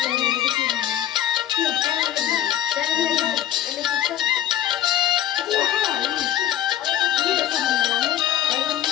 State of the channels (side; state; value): right; quieter; 11.8 dB